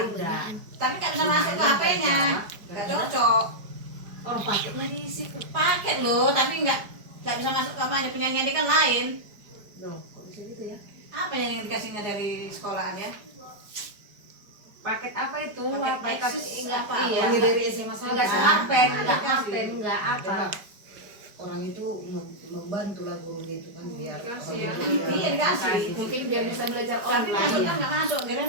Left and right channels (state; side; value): late; left; 5.0 ms